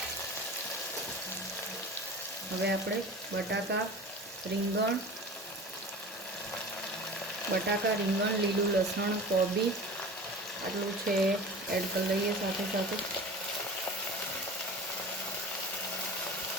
હવે આપણે બટાકા, રીંગણ, લીલું લસણ, કોબી આટલું છે એડ કરી લઈએ. સાથે સાથે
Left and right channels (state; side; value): normal; both; correlation 0.37